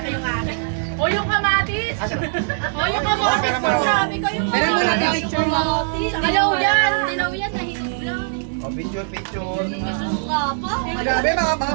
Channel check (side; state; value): left; silent; digital silence